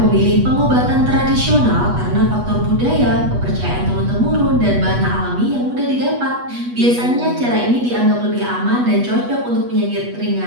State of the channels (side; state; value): left; late; 8.2 ms